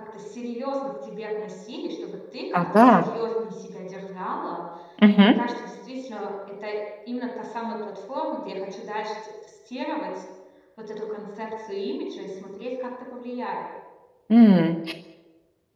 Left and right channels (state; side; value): identical; both; correlation 1.00